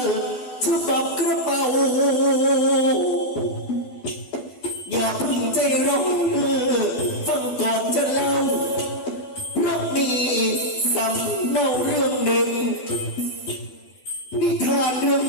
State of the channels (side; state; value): right; late; 12 ms